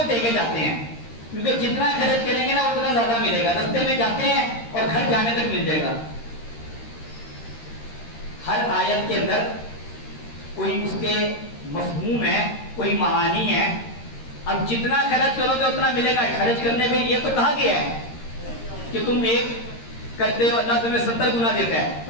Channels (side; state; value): right; late; 13 ms